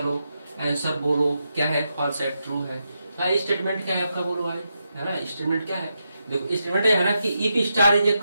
आंसर बोलो, क्या है, फॉल्स है, ट्रू है। भाई स्टेटमेंट क्या है आपका, बोलो भाई, है ना। स्टेटमेंट क्या है, देखो स्टेटमेंट है ना कि if star is a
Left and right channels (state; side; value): inverted; both; correlation -0.85